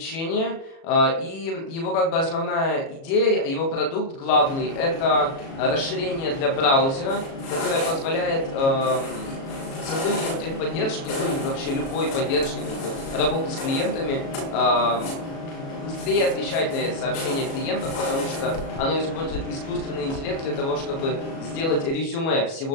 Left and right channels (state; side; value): late; right; 37 ms